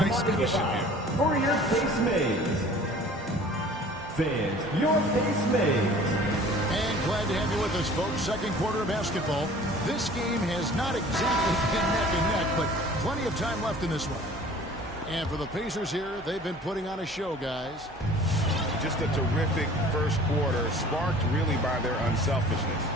cushion here. For your face mates. Fans, your face mates. And glad to have you with us, folks. Second quarter of basketball. This game has not exactly been neck and neck, but plenty of time left in this one. And for the Pacers here, they've been putting on a show, guys. Just a terrific first quarter, sparked really by their unselfishness.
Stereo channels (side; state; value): both; normal; correlation 0.47